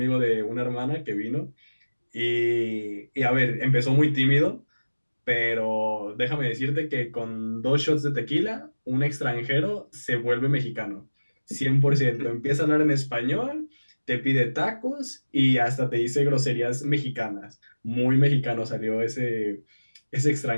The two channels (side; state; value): both; inverted; correlation -1.00